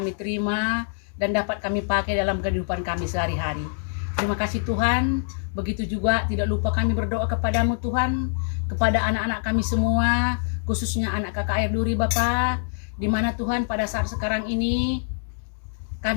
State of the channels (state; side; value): silent; right; digital silence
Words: terima dan dapat kami pakai dalam kehidupan kami sehari-hari. Terima kasih Tuhan. Begitu juga tidak lupa kami berdoa kepadamu Tuhan, kepada anak-anak kami semua, khususnya anak KKR Duri Bapa, di mana Tuhan pada saat sekarang ini